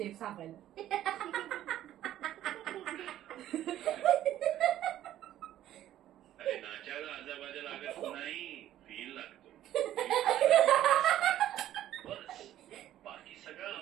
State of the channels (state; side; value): quieter; left; 12.6 dB